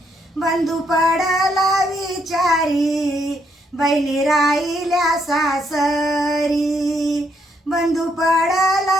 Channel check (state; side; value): normal; both; correlation 0.74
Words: बंधू पडला विचारी बहिणी राहिल्या सासरी. बंधू